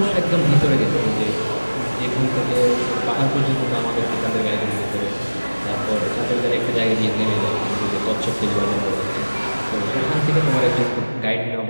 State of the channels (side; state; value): both; inverted; correlation -1.00